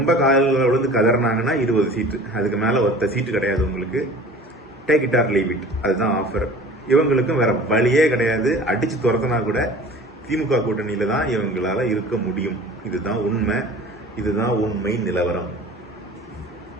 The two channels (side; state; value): both; normal; correlation 0.43